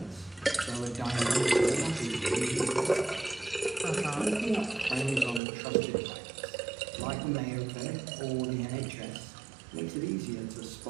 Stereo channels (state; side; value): drops out; left; at 5.4 s